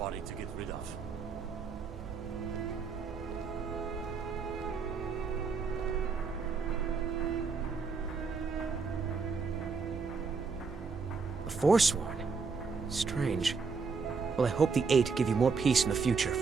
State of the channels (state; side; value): quieter; left; 5.1 dB